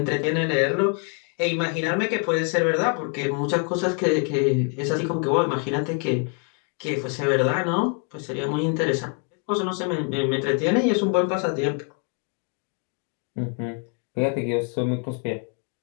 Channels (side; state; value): right; quieter; 37.6 dB